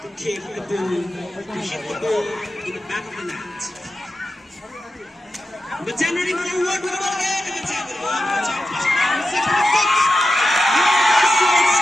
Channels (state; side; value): normal; both; correlation 0.90